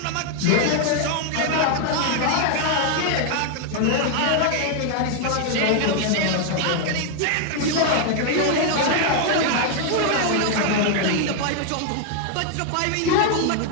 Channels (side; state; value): both; different; correlation 0.00